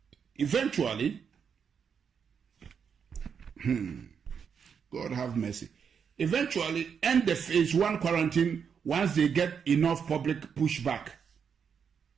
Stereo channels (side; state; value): left; quieter; 6.8 dB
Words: Eventually, God have mercy. Eventually, end the phase 1 quarantine once they get enough public pushback